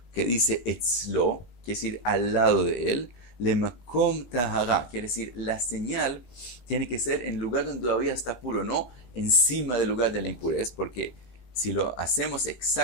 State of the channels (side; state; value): right; late; 17 ms